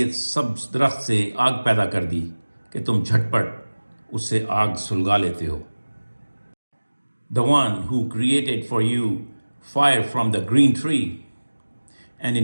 سبز درخت سے آگ پیدا کر دی کہ تم جھٹ پٹ اس سے آگ سلگا لیتے ہو. The one who created for you fire from the green tree, and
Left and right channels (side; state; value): both; inverted; correlation -1.00